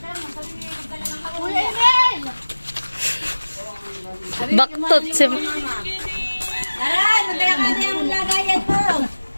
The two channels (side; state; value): both; inverted; correlation -1.00